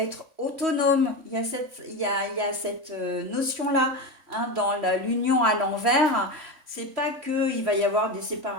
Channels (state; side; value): late; left; 3.5 ms